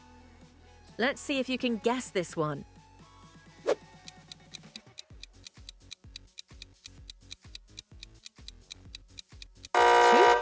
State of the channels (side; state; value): both; identical; correlation 1.00